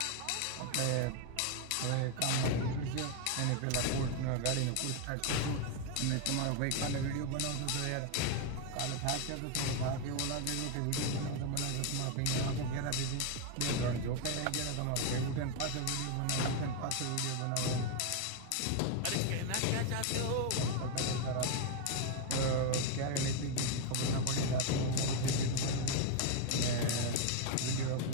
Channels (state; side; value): different; both; correlation 0.01